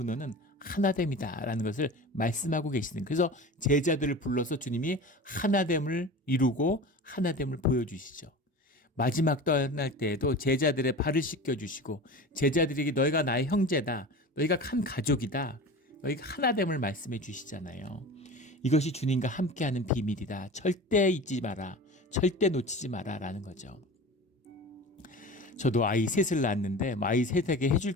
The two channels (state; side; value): normal; both; correlation 0.34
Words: 하나됨이다라는 것을 말씀하고 계시는, 그래서 제자들을 불러서 주님이 하나됨을 이루고 하나됨을 보여주시죠. 마지막 떠날 때에도 제자들의 발을 씻겨주시고 제자들에게 너희가 나의 형제다, 너희가 한 가족이다, 너희가 하나됨을 말씀해 주시잖아요. 이것이 주님과 함께하는 비밀이다. 절대 잊지 마라. 절대 놓치지 마라 라는 거죠. 저도 아이 셋을 낳았는데 아이 셋에게 해줄